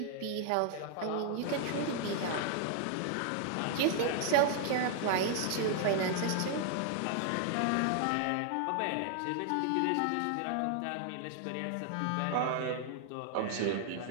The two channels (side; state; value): both; different; correlation 0.00